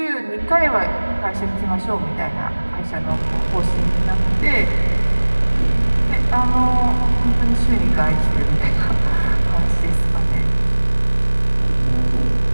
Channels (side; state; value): both; inverted; correlation -1.00